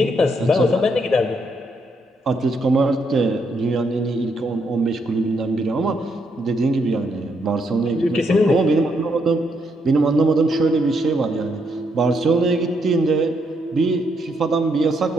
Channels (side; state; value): both; normal; correlation 0.76